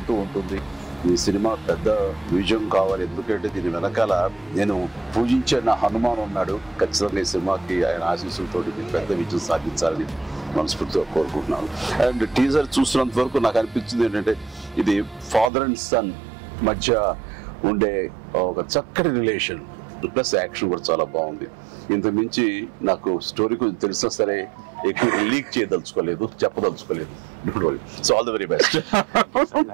ఉంటుంది. ఈ సినిమా పెద్ద విజయం కావాలి. ఎందుకంటే దీని వెనకాల నేను పూజించే నా హనుమాన్ ఉన్నాడు. ఖచ్చితంగా ఈ సినిమాకి ఆయన ఆశీస్సులతో పెద్ద విజయం సాధించాలని మనస్ఫూర్తిగా కోరుకుంటున్నాను. అండ్ టీజర్ చూసినంత వరకు నాకు అనిపించింది ఏంటంటే ఇది ఫాదర్ అండ్ సన్ మధ్య ఉండే ఒక చక్కటి రిలేషన్, ప్లస్ యాక్షన్ కూడా చాలా బాగుంది. ఇంతకు మించి నాకు స్టోరీ కొంచెం తెలిసినా సరే ఎక్కువ లీక్ చేయదలుచుకోలేదు, చెప్పదలుచుకోలేదు. Don't worry. So all the very best.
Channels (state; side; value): drops out; left; at 15.5 s